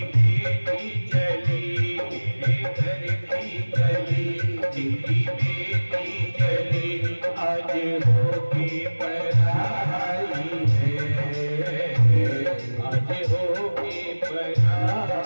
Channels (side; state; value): both; inverted; correlation -1.00